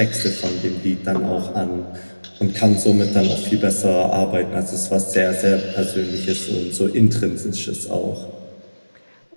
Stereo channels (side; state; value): both; inverted; correlation -1.00